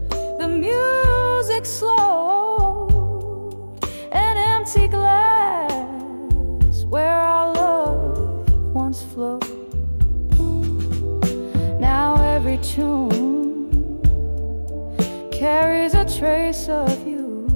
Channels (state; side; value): inverted; both; correlation -1.00